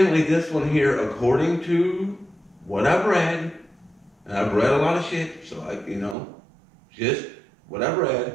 this one here, according to what I've read, and I've read a lot of shit, so just what I've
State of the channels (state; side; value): drops out; left; at 6.2 s